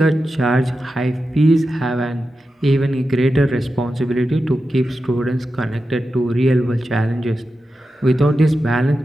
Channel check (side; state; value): both; normal; correlation 0.91